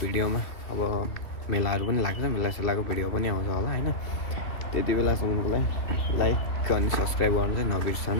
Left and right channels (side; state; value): right; late; 2.3 ms